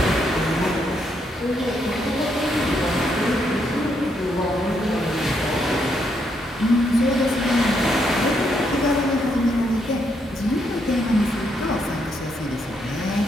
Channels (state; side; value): normal; both; correlation 0.76